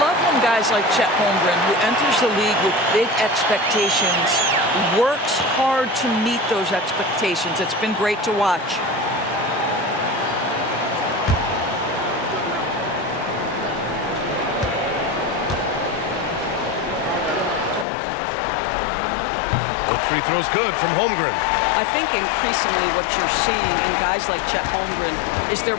when guys like Chet Holmgren, who enters the league with big expectations, works hard to meet those expectations. It's been great to watch. Both free throws good from Holmgren. I think increasingly what you're seeing in guys like Chet Holmgren is they're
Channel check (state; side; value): drops out; right; at 17.9 s